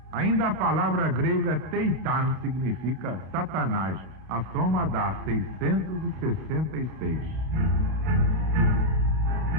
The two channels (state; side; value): late; left; 31 ms